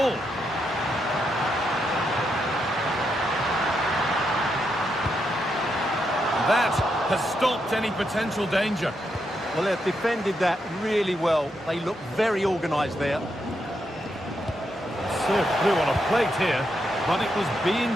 That has stopped any potential danger. Well, they've defended that really well. They look very organised there. Serve through on a plate here, but it was being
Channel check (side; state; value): both; normal; correlation 0.82